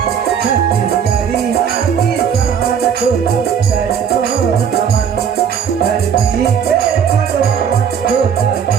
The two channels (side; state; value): left; quieter; 7.6 dB